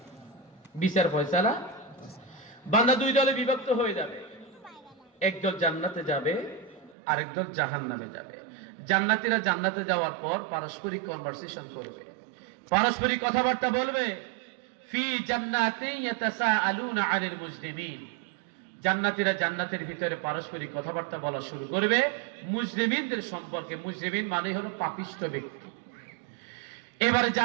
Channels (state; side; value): drops out; left; at 7.0 s